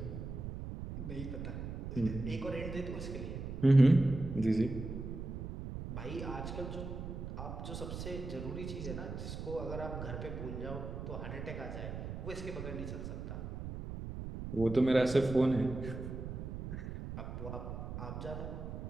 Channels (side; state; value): right; noise; rumble, 6 dB below the sound